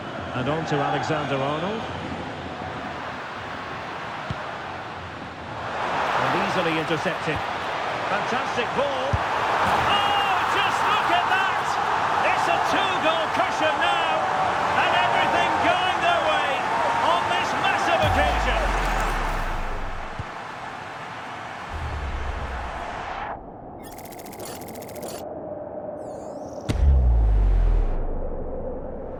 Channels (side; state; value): both; identical; correlation 1.00